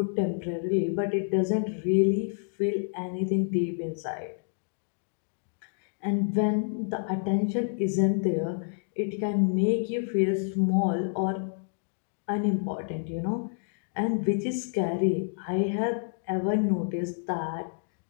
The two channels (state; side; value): silent; right; digital silence